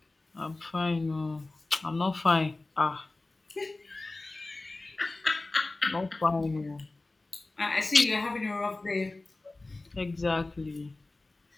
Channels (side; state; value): right; quieter; 3.1 dB